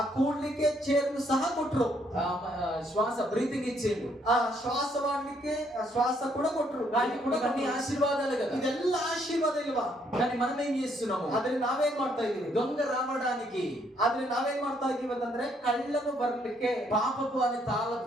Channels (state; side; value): normal; both; correlation 0.70